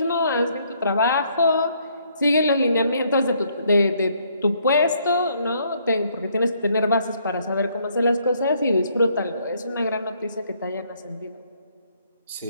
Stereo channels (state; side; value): inverted; both; correlation -0.69